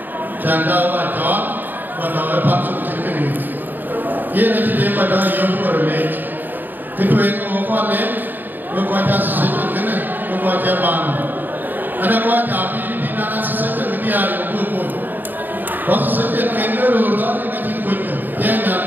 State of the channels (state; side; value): late; left; 0.089 ms